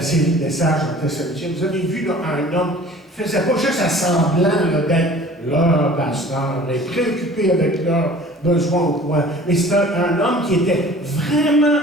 série de messages en Thessaloniciens, vous avez vu là, un homme qui ne faisait pas juste à semblant d'être leur pasteur, et préoccupé avec leurs besoins ou quoi, mais c'était un homme qui était vraiment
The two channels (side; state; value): both; normal; correlation 0.47